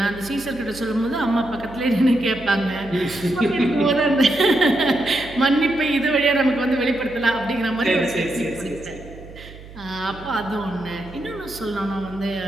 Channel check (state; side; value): noise; right; hum, 17 dB below the sound